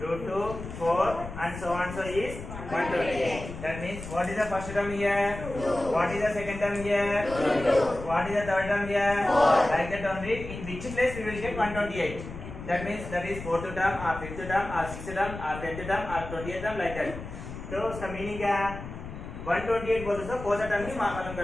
2, 4 and so on so is 128. That means what is the first term here? 2. What is the second term here? 2. What is the third term here? 4. Like that only. In which place we will get 128? That means that is 4th term or 5th term or 6th term or 10th term or 20th term like that. तो उसका meaning क्या है? 128 बोलते तो 4th term की मालूम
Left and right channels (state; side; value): noise; left; rumble, 10 dB below the sound